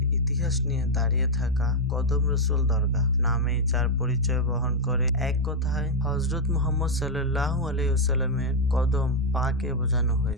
ইতিহাস নিয়ে দাঁড়িয়ে থাকা কদম রসুল দরগাহ নামেই যার পরিচয় বহন করে। এক কথায় হযরত মুহাম্মদ সাল্লাল্লাহু আলাইহি ওয়াসাল্লামের কদম পাকে বোঝানো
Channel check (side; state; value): both; normal; correlation -0.01